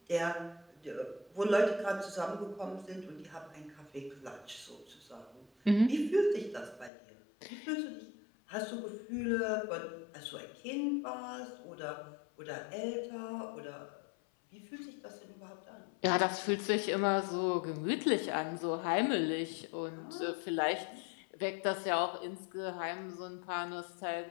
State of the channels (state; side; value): drops out; right; at 6.9 s